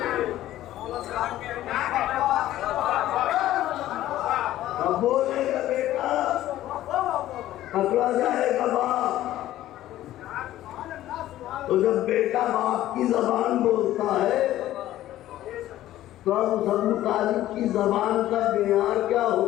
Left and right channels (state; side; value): quieter; right; 14.0 dB